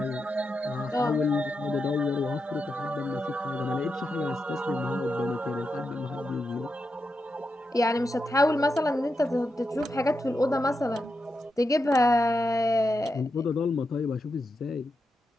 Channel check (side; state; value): both; normal; correlation 0.87